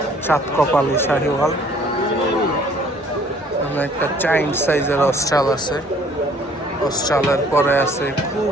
চাঁদ কপালি শাহিওয়াল। একটা চাইন্ড সাইজের অস্ট্রাল আছে, অস্ট্রালের পরে আছে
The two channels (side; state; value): both; normal; correlation 0.57